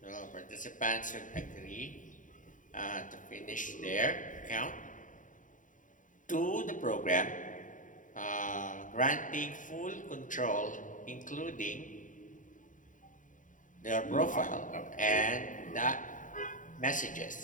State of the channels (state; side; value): late; right; 0.38 ms